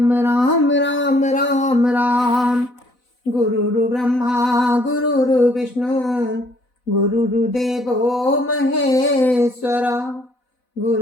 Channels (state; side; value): late; right; 4.0 ms